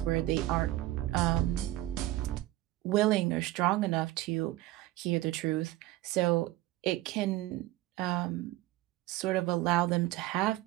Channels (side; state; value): left; quieter; 16.9 dB